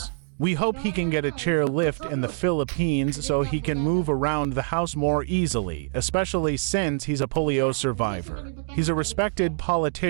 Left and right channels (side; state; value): left; silent; digital silence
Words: We hope he can get a chair lift in the Philippines so he can move around the house more easily, especially since he's a polio survivor. He's a respected